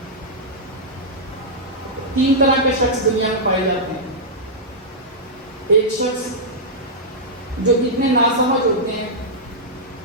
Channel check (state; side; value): normal; both; correlation -0.10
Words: 3 طرح کے شخص دنیا میں پائے جاتے ہیں. ایک شخص جو اتنے ناسمجھ ہوتے ہیں